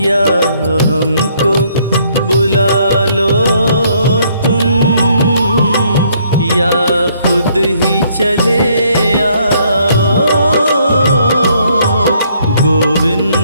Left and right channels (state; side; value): inverted; both; correlation -0.67